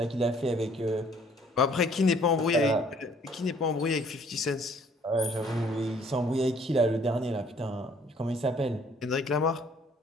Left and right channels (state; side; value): normal; both; correlation 0.59